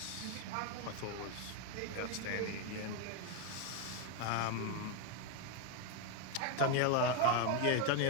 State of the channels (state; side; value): different; both; correlation 0.01